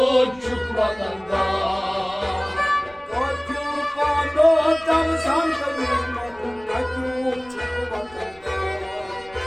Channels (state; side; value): noise; left; rumble, 27 dB below the sound